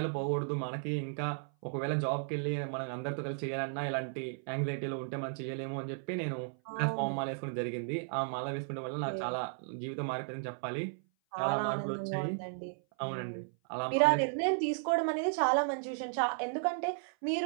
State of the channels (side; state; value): left; silent; 55 dB below the other